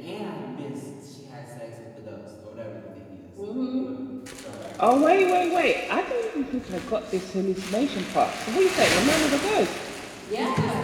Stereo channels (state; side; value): identical; both; correlation 1.00